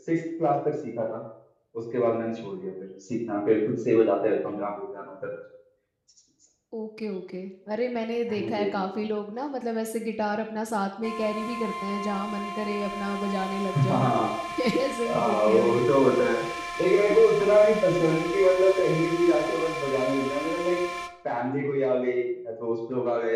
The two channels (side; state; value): both; identical; correlation 1.00